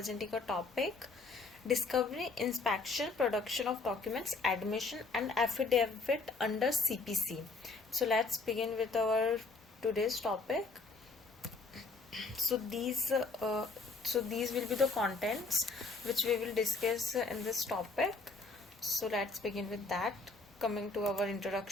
a topic: Discovery, Inspection, Production of Documents, Admission and Affidavit under CPC. So let's begin with our today's topic. So these will be the contents which we will discuss in this topic. So let's begin with that. Coming to our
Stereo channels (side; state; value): right; quieter; 3.8 dB